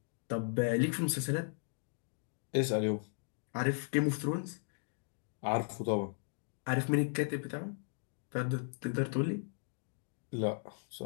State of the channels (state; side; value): silent; right; digital silence